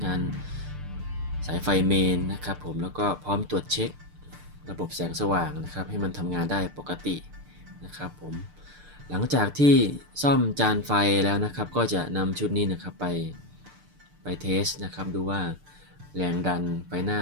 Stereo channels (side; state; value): left; late; 6.7 ms